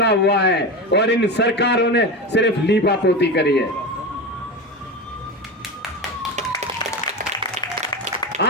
हुआ है, और इन सरकारों ने सिर्फ लीपापोती करी है।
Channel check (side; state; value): both; normal; correlation 0.22